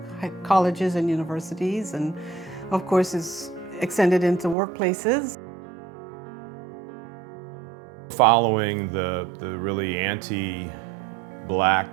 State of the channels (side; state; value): left; drops out; at 4.5 s